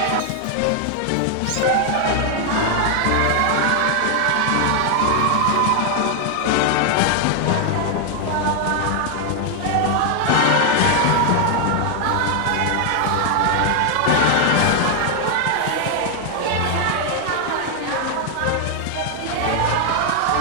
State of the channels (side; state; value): both; different; correlation 0.00